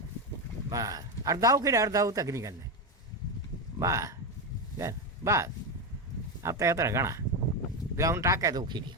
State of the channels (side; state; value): both; normal; correlation 0.12